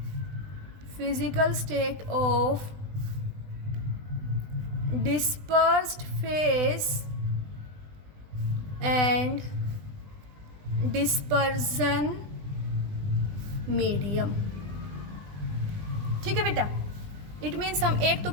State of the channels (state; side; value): late; left; 20 ms